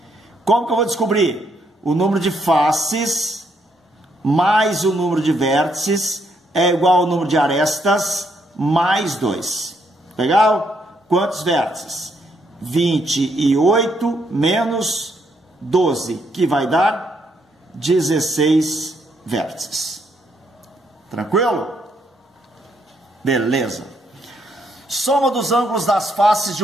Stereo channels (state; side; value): normal; both; correlation 0.74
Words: Como que eu vou descobrir? O número de faces mais o número de vértices é igual ao número de arestas mais 2. Legal? Quantos vértices? 28 menos 12, que vai dar 16 vértices. Tranquilo? Beleza. Soma dos ângulos das faces de